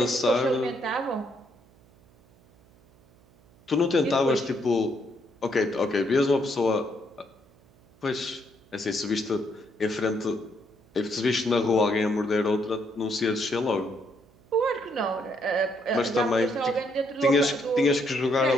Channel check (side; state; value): right; noise; hum, 29 dB below the sound